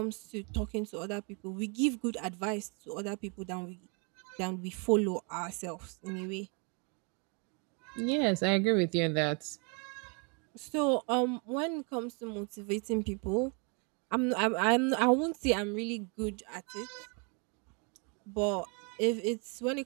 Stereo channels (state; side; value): quieter; left; 34.9 dB